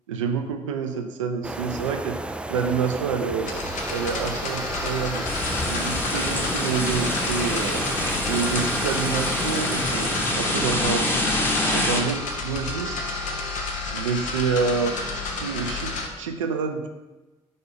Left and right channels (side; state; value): both; normal; correlation 0.20